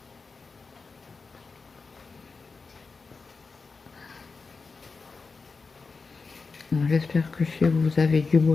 J'espère que chez vous, vous avez du beau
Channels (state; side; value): quieter; right; 4.5 dB